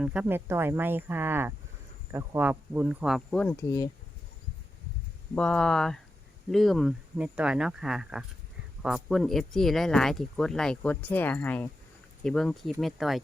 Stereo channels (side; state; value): both; normal; correlation 0.89